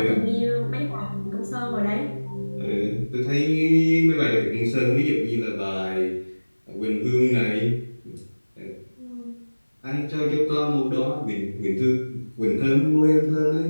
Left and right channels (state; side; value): inverted; both; correlation -1.00